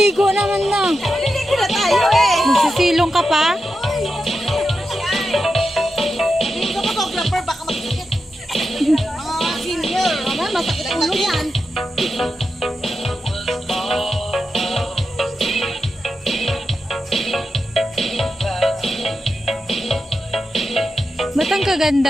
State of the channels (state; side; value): normal; both; correlation 0.89